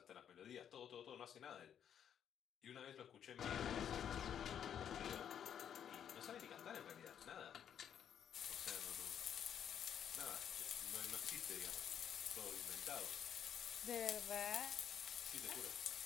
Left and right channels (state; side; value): quieter; right; 9.0 dB